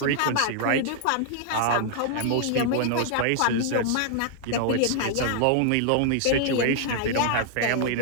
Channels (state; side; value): different; both; correlation -0.01